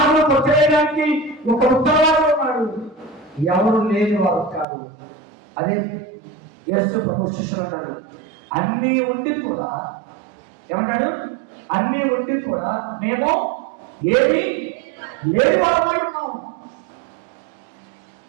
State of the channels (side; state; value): left; drops out; at 4.7 s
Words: కొట్టేయడానికి ఒక ఉత్తరవాది ఉన్నాడు. ఎవరు లేని వారు కాదు. అదే యేసు ప్రభు శిష్యులు అన్నాడు, అన్నీ ఉండి కూడా ఏమన్నాడు? అన్నీ ఉండి కూడా మేము ఏమి లేని వారు ఉన్నాం.